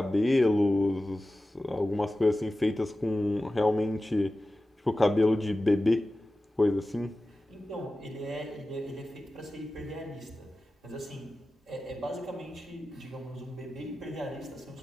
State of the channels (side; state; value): both; normal; correlation 0.95